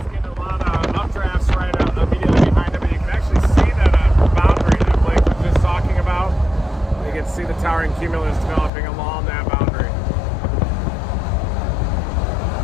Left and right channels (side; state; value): right; drops out; at 8.7 s